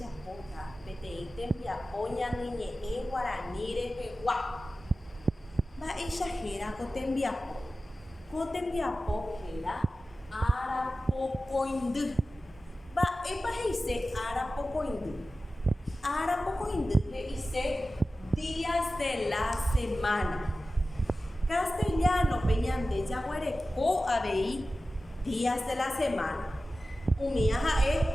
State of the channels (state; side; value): normal; both; correlation 0.95